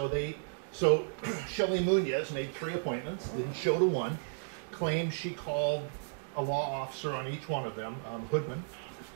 Shelley Munoz made 3 appointments, didn't show to one, claims she called a law officer on each one of them, Hoodman,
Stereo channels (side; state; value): left; silent; digital silence